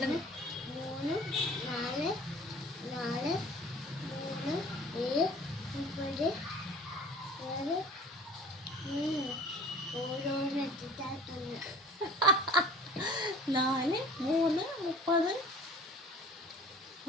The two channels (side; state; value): both; normal; correlation 0.46